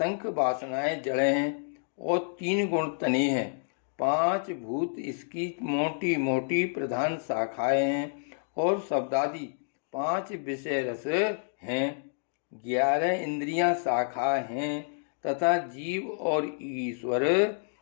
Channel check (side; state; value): right; silent; digital silence